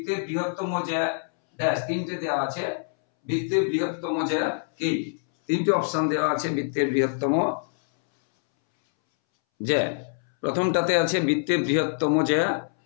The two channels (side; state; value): right; silent; 62 dB below the other